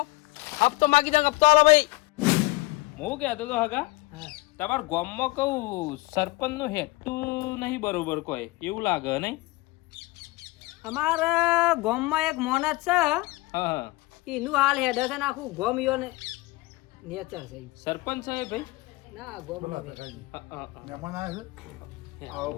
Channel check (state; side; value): quieter; right; 21.6 dB